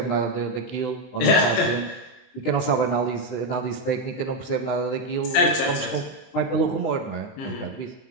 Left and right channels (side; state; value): right; late; 20 ms